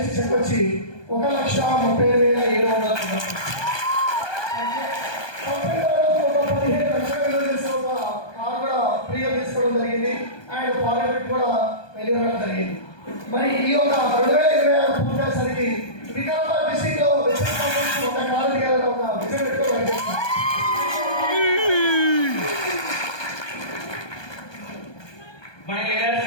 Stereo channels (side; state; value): right; late; 1.2 ms